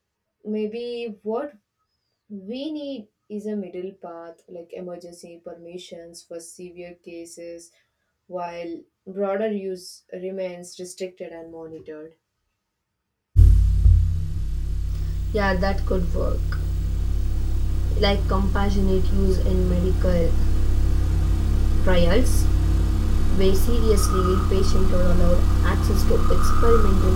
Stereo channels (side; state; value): both; identical; correlation 1.00